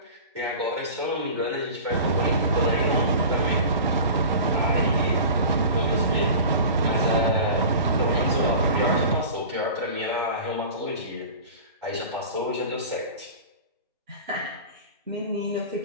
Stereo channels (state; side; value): inverted; both; correlation -0.36